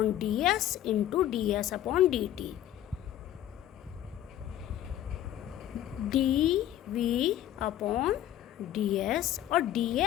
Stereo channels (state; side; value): quieter; right; 12.2 dB